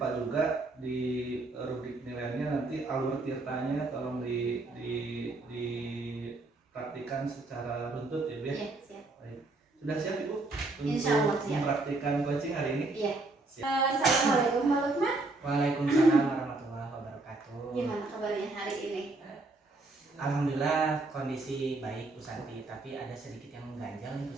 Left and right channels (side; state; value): left; quieter; 3.2 dB